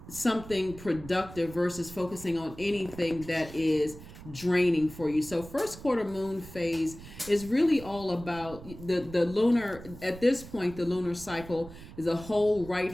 something productive versus focusing on anything that is draining for you. So first quarter moon phase is really all about the lunar, at this point, the lunar cycle is the whole right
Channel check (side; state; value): right; noise; rumble, 16 dB below the sound